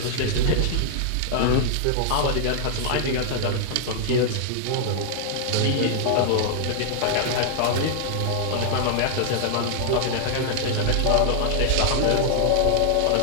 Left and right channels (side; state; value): both; different; correlation -0.01